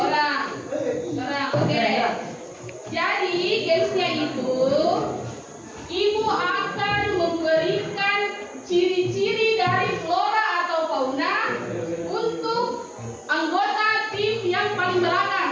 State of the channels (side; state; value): both; identical; correlation 1.00